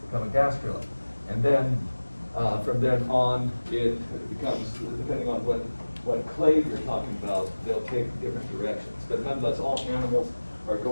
gastrula. And then from then on, it becomes, depending on what clade you're talking about, they'll take different directions. But nonetheless, all animals are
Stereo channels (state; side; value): inverted; both; correlation -1.00